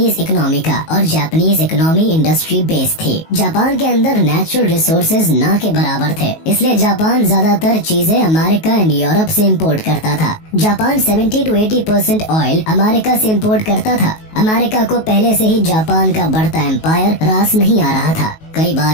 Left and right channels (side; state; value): right; late; 19 ms